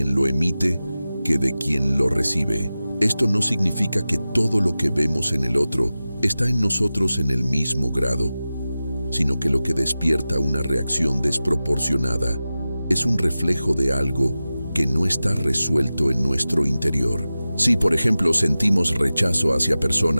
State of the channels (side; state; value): both; inverted; correlation -0.95